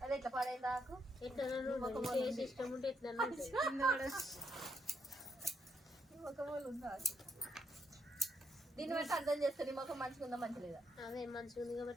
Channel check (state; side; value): normal; both; correlation 0.76